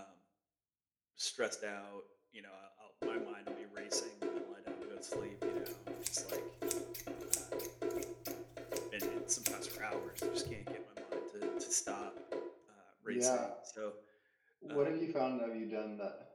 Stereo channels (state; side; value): identical; both; correlation 1.00